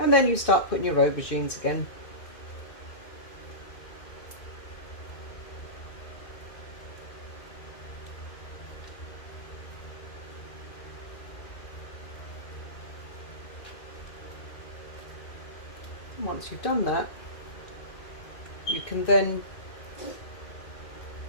then you start putting your aubergines again. And once you've done that, you can then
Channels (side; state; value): right; late; 2.6 ms